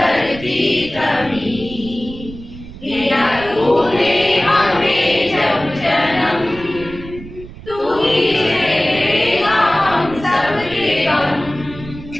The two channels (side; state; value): right; noise; rumble, 15 dB below the sound